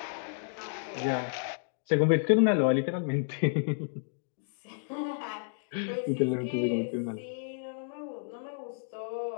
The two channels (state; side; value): silent; right; digital silence